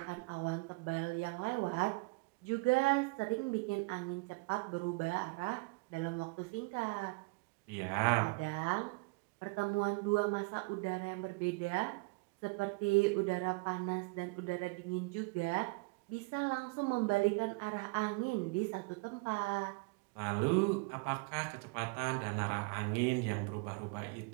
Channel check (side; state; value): left; quieter; 27.8 dB